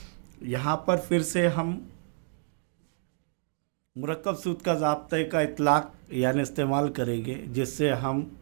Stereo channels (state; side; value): silent; left; digital silence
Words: यहाँ पर फिर से हम मुरक्कब सूद का ज़ाब्ते का इतलाक़ यानी इस्तेमाल करेंगे, जिससे हम